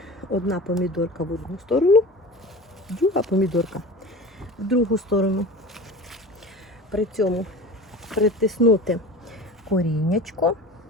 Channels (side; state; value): both; normal; correlation 0.35